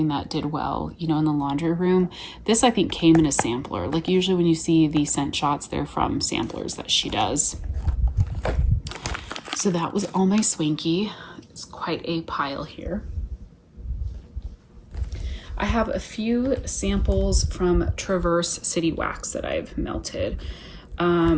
that did well, you know, in the laundry room. This I think came in a sampler. Like usually when you see these scent shots, they're from samplers that she does. So that was all my Swanky. It's quite a pile here. I have a few samples from Traverse City Wax that I've melted.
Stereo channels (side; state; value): both; identical; correlation 1.00